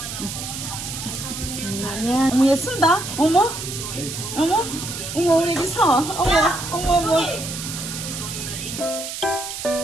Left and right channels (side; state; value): right; noise; hiss, 7 dB below the sound